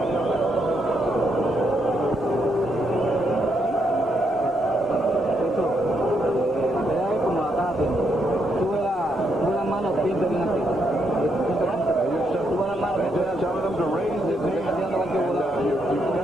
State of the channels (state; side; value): normal; both; correlation 0.77